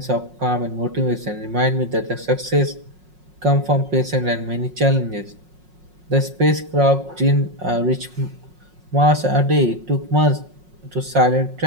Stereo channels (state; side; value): late; left; 5.5 ms